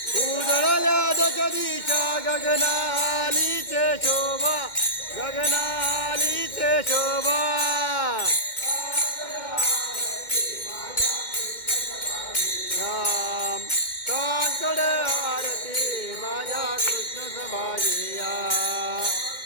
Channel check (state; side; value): late; right; 2.1 ms